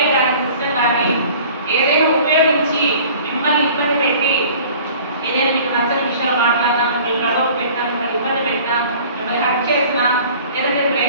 కానీ సిస్టమ్ కానీ ఏదైనా ఉపయోగించి మిమ్మల్ని ఇబ్బంది పెట్టి ఏదైనా మీకు నచ్చని విషయాలు మాట్లాడినా మిమ్మల్ని గొడవ పెట్టినా మిమ్మల్ని ఇబ్బంది పెట్టినా మిమ్మల్ని హర్ట్ చేసినా లేదంటే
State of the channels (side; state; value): both; inverted; correlation -0.47